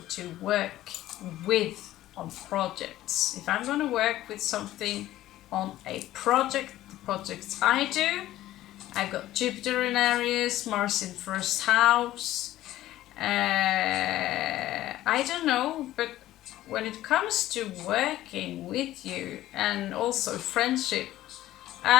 to work with on projects. If I'm going to work with something on a project, the projects I do, I've got Jupiter in Aries, Mars in first house. I don't know, but when it comes to working with you and also friendship,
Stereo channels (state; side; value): quieter; right; 14.6 dB